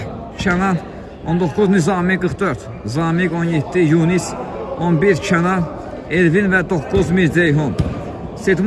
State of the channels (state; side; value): identical; both; correlation 1.00